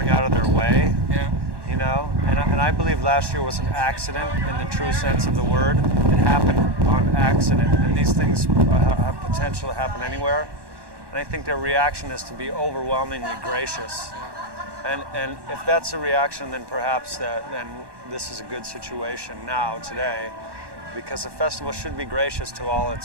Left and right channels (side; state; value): left; late; 1.1 ms